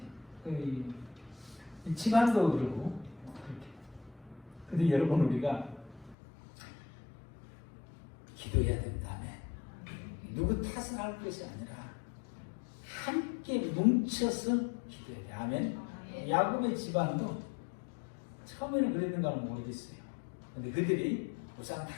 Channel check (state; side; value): drops out; right; at 6.2 s